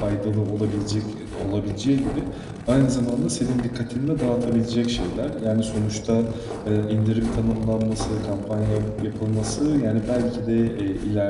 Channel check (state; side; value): identical; both; correlation 1.00